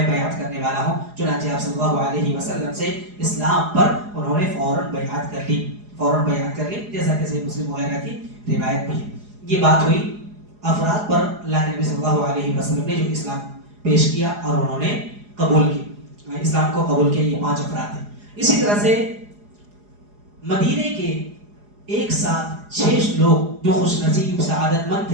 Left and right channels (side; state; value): left; late; 4.8 ms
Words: بیعت کرنے والا ہوں. چنانچہ آپ صلی اللہ علیہ وسلم سے اسلام پر انہوں نے فوراً بیعت کر لی، جیسا کہ صحیح مسلم وغیرہ کی روایت بھی ہے. یہ بات ہوئی افراد پر اللہ کے نبی صلی اللہ علیہ وسلم نے جو اسلام پیش کیا اور انہوں نے قبول کی، اسلام کو قبول کیا. یہ 5 افراد ہیں. اسی طرح سے مدینے کے ایک ساتھ 6 لوگ جو خوش نصیب سعادت مند